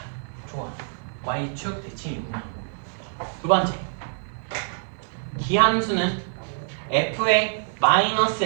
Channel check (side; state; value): left; silent; digital silence